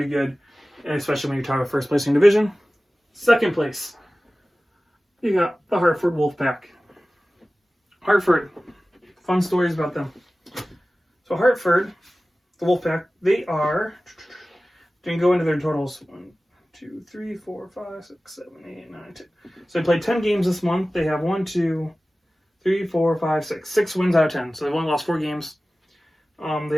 good, and especially when you're talking about first place in division. Second place, you got the Hartford Wolfpack. Hartford, fun stories about them. So Hartford, the Wolfpack, they are, didn't go into their totals. 1, 2, 3, 4, 5, 6, 7, 8, 9, 10. So they played 10 games this month. They have 1, 2, 3, 4, 5, 6. 6 wins out of 10. So they've only lost 4 games. They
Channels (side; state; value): both; normal; correlation 0.97